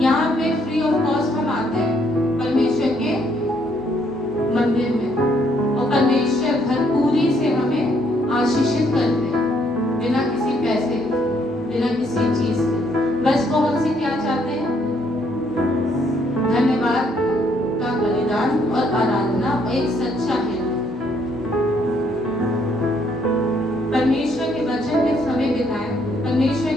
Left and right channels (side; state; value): both; normal; correlation 0.69